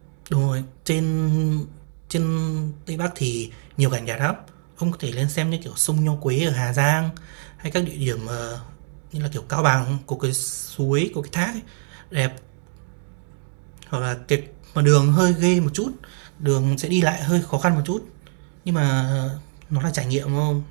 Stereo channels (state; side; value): silent; left; digital silence